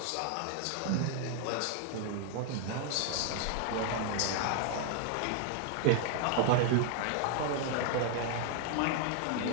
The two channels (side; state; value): both; different; correlation 0.00